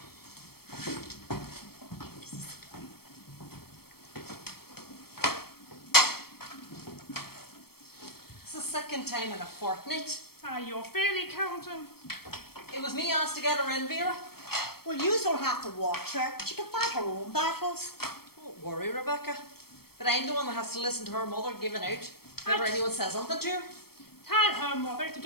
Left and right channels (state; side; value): late; right; 0.95 ms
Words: It's the second time in a fortnight. Ah, you're fairly counting. It was me asked to get her in, Vera. Well, you don't have to watch her. She can fight her own battles. Don't worry, Rebecca. But I'm the one that has to listen to her mother giving out if ever anyone says something to her. Tell her mother to